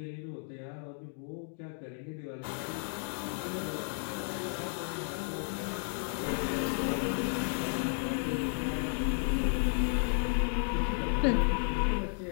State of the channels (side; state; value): right; silent; 56 dB below the other